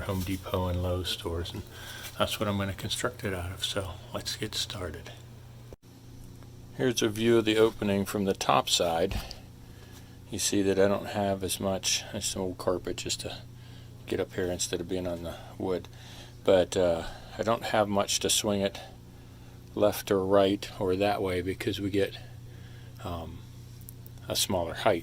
Home Depot and Lowe's stores, and that's what I'm going to construct it out of. So let's get started. Here's a view of the opening from the top side. You see that I don't have as much as some old carpet just to get up here instead of being on the wood, but I don't have much to swing it left or right or that way because we get a smaller height.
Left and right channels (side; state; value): both; identical; correlation 1.00